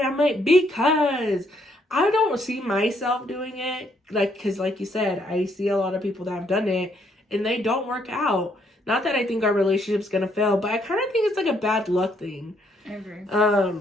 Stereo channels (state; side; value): normal; both; correlation 0.71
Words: I'm like, because I don't see myself doing it, like, because like you said, I see a lot of people that have done it, and they don't work out. Not that I think our relationship's gonna fail, but I kind of think it's like a bad luck thing. I agree.